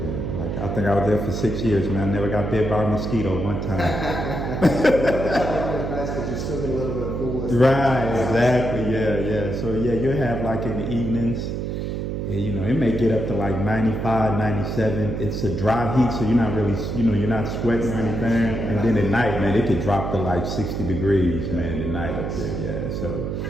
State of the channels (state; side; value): noise; right; hum, 3 dB below the sound